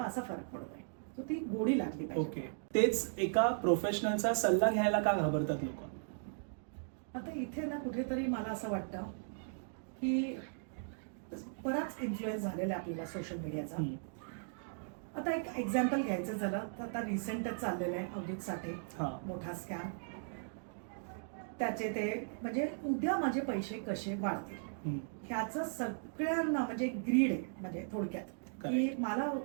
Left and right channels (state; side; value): silent; left; digital silence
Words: फरक पडतोय. तो ती गोडी लागली पाहिजे. ओके. तेच एका प्रोफेशनलचा सल्ला घ्यायला का घाबरतात लोक? आता इथे ना कुठेतरी मला असं वाटतं की बराच इन्फ्लुएन्स झालेला आहे आपल्याला सोशल मीडियाचा. आता एक एक्झाम्पल घ्यायचं झालं तर आता रिसेंटच चाललेलं आहे अवधूत साठे, मोठा स्कॅम. त्याचे ते म्हणजे उद्या माझे पैसे कसे वाढतील ह्याचं सगळ्यांना म्हणजे ग्रीड आहे. म्हणजे थोडक्यात की मला